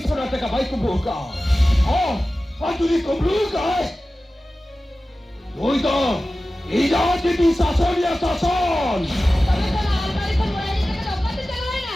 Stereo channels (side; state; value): both; normal; correlation 0.96